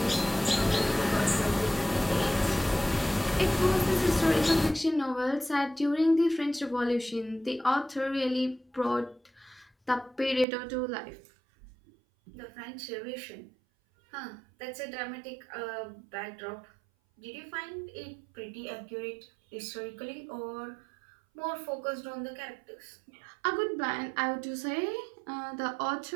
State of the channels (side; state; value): left; drops out; at 10.5 s